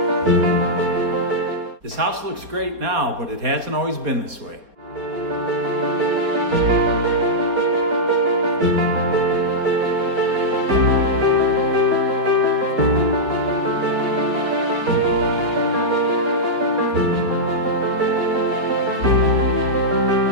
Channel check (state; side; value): late; left; 4.1 ms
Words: This house looks great now, but it hasn't always been this way.